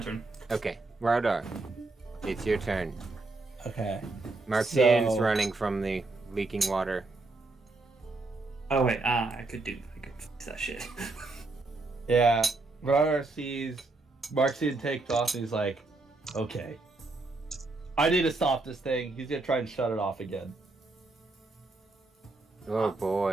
Okay, Rognar. It's your turn. Okay. Marxian's So- running from the leaking water. Oh wait, I could fix that shit. Yeah. Rognar sees Marxian takes off and he's like, okay. I need to stop this thing. He's gonna try and shut it off again. Oh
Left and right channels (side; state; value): left; quieter; 3.3 dB